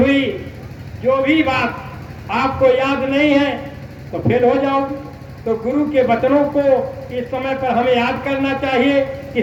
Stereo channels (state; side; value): identical; both; correlation 1.00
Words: जो भी बात आपको याद नहीं है तो फेल हो जाओगे। तो गुरु के वचनों को इस समय पर हमें याद करना चाहिए कि